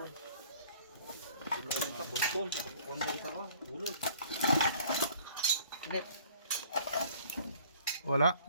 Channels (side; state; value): both; inverted; correlation -0.53